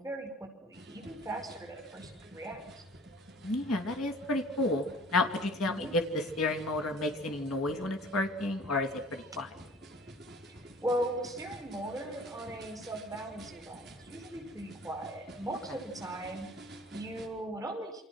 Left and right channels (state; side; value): normal; both; correlation 0.48